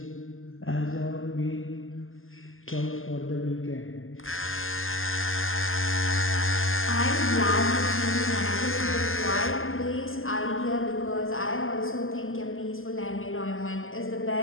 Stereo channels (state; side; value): late; right; 0.59 ms